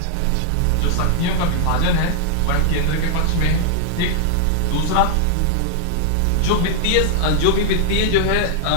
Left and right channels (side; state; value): both; different; correlation 0.00